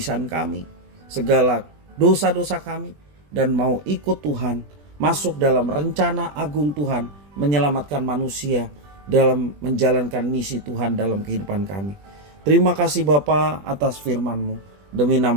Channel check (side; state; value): left; late; 20 ms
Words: kami, segala dosa-dosa kami, dan mau ikut Tuhan, masuk dalam rencana agung Tuhan, menyelamatkan manusia dalam menjalankan misi Tuhan dalam kehidupan kami. Terima kasih Bapa atas firman-Mu. Demi